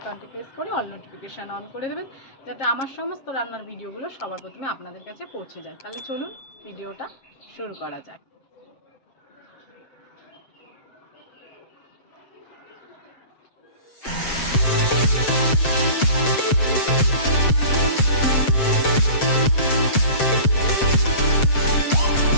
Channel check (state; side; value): late; right; 7.6 ms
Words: প্রেস করে অল নোটিফিকেশান অন করে দেবেন, যাতে আমার সমস্ত রান্নার ভিডিওগুলো সবার প্রথমে আপনাদের কাছে পৌঁছে যায়। তাহলে চলুন ভিডিওটা শুরু করা যায়।